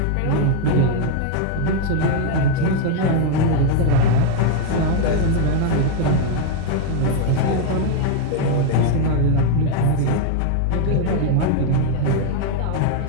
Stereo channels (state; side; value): different; both; correlation 0.00